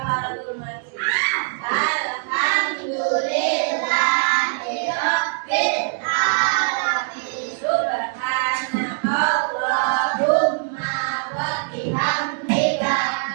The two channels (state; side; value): silent; left; digital silence